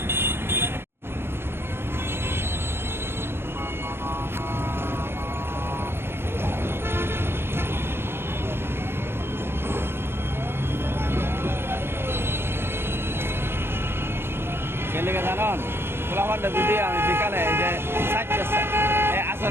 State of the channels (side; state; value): left; late; 0.11 ms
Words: গেলে জানান পোলাপানটা যদি আমি বিকালে এই যে